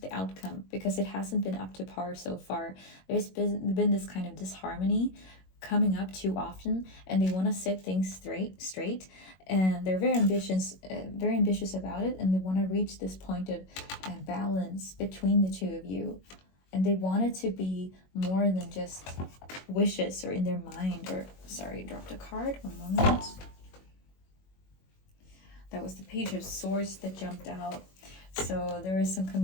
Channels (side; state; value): right; late; 21 ms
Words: outcome because it hasn't been up to par so far. There's been this kind of disharmony coming up too often, and they want to set things straight, and they're very ambitious about it, and they want to reach this point of balance between the two of you, and they want it to be more than just wishes or in their mind. Or sorry, dropped a card, one moment. That was the Page of Swords that jumped out. So there is some